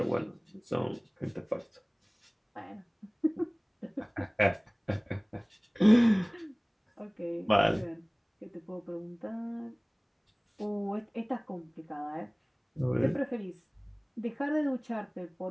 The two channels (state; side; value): identical; both; correlation 1.00